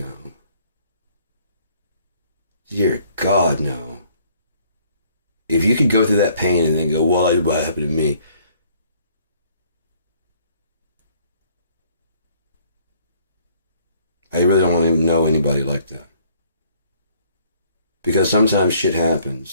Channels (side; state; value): both; inverted; correlation -0.62